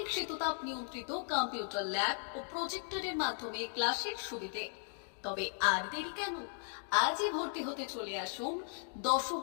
শীততাপ নিয়ন্ত্রিত কম্পিউটার ল্যাব ও প্রজেক্টরের মাধ্যমে ক্লাসের সুবিধে। তবে আর দেরি কেন? আজই ভর্তি হতে চলে আসুন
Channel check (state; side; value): silent; right; digital silence